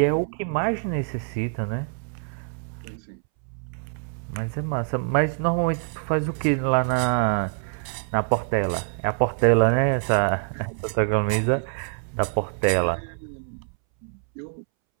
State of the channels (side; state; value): left; silent; 62 dB below the other